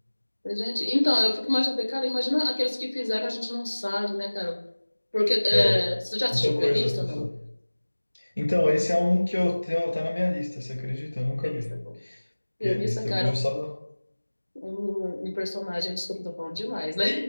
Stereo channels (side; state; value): both; inverted; correlation -1.00